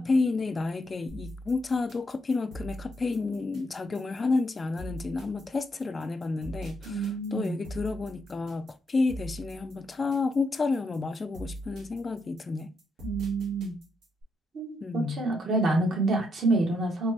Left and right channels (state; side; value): normal; both; correlation 0.78